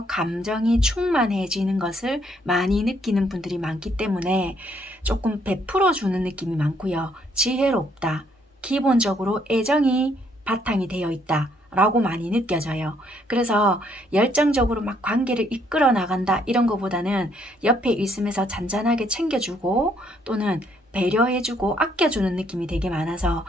감정이 충만해지는 것을 많이 느끼는 분들이 많기 때문에 조금 베풀어 주는 느낌이 많고요. 지혜롭다. 기본적으로 애정이 바탕이 되어 있다. 라고 많이 느껴져요. 그래서 열정적으로 막 관계를 이끌어 나간다 이런 것보다는 옆에 있으면서 잔잔하게 챙겨주고 또는 배려해주고 아껴주는 느낌이 되게 많아서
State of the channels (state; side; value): normal; both; correlation 0.69